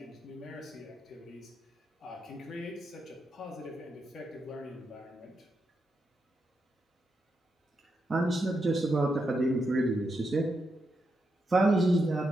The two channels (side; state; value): both; normal; correlation 0.84